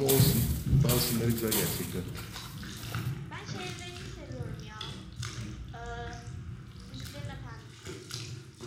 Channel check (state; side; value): identical; both; correlation 1.00